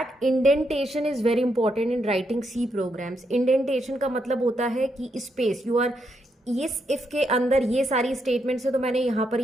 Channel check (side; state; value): both; normal; correlation 0.80